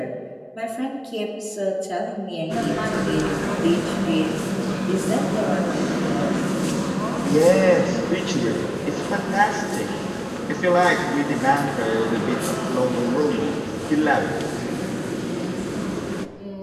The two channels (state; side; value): identical; both; correlation 1.00